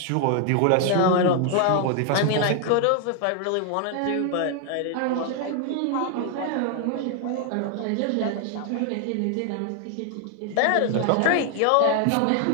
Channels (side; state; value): both; different; correlation 0.00